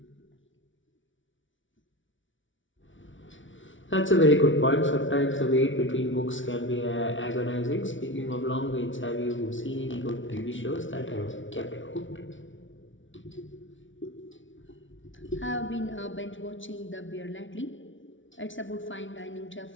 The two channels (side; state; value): right; late; 0.56 ms